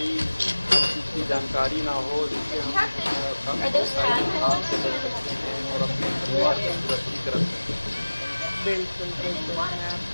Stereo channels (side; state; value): both; inverted; correlation -1.00